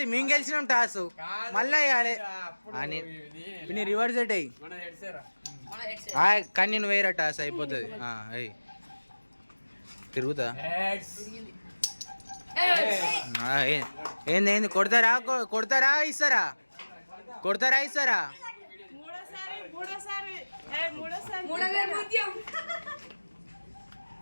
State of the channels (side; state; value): both; inverted; correlation -1.00